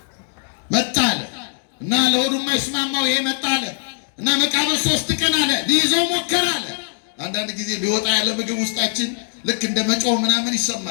መጣ አለ እና ለሆዱ የማይስማማው ይሄ መጣ አለ እና መቃብር 3 ቀን አለ ሊይዘው ሞከረ አለ። አንዳንድ ጊዜ ሊወጣ ያለ ምግብ ውስጣችን ልክ እንደ መጮህ ምናምን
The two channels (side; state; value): right; silent; digital silence